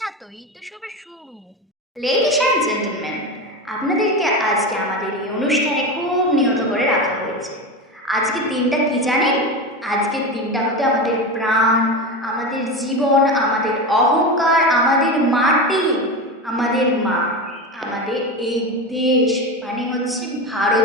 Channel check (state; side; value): normal; both; correlation 0.22